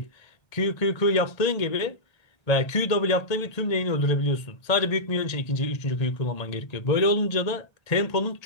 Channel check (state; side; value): late; right; 1.8 ms